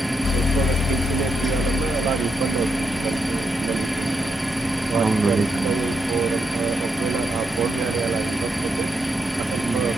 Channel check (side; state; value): both; normal; correlation 0.81